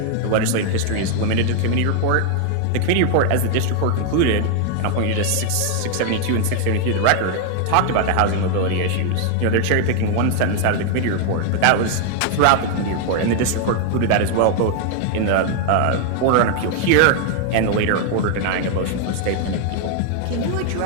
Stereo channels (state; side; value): different; both; correlation 0.00